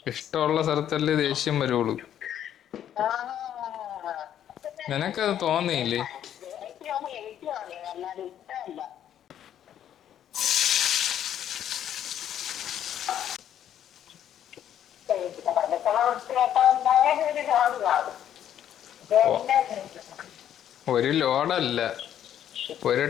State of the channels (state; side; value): quieter; right; 10.4 dB